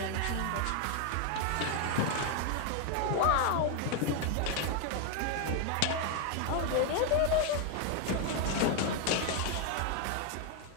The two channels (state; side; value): different; both; correlation 0.01